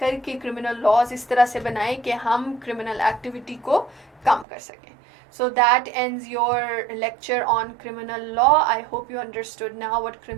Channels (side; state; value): left; drops out; at 4.5 s